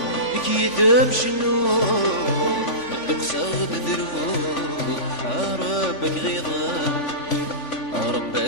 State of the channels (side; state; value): right; late; 3.5 ms